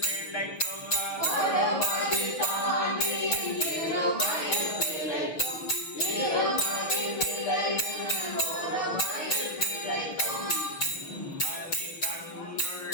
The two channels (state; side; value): late; right; 6.4 ms